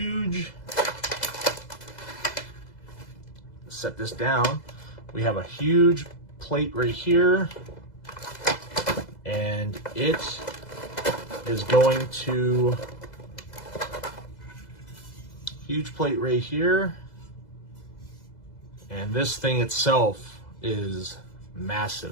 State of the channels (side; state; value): right; late; 2.0 ms